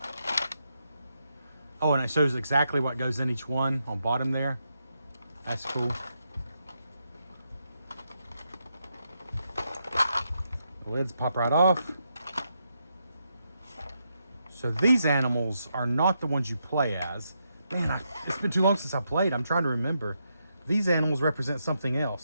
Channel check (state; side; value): inverted; both; correlation -0.82